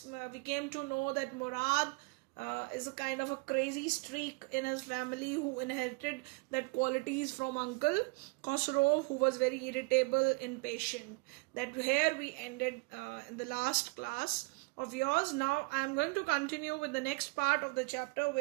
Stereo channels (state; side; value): quieter; left; 27.9 dB